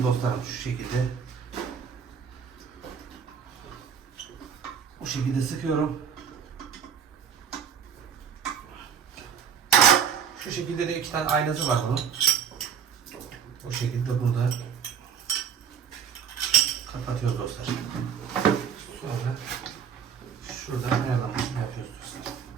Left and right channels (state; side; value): quieter; left; 7.4 dB